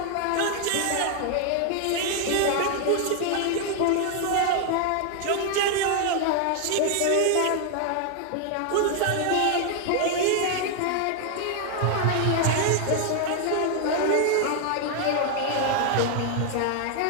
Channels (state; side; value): different; both; correlation 0.00